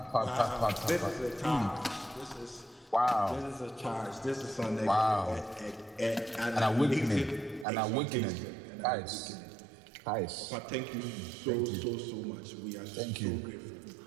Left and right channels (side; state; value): left; drops out; at 7.7 s